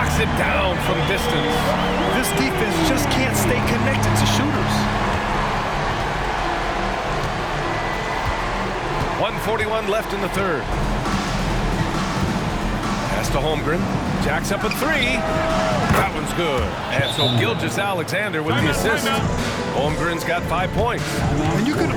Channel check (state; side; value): identical; both; correlation 1.00